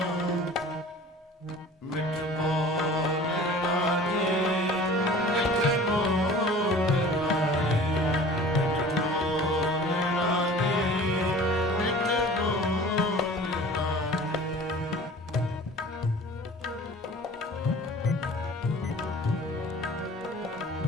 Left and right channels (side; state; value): both; normal; correlation 0.44